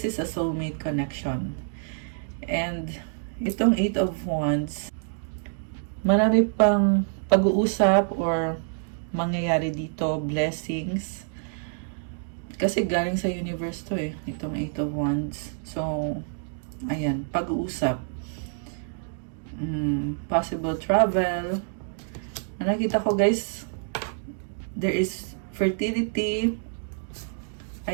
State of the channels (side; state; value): left; silent; digital silence